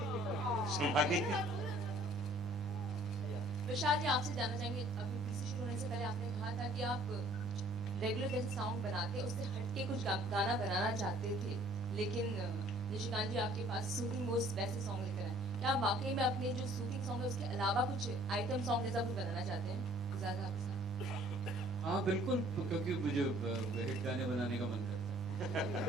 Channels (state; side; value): normal; both; correlation 0.56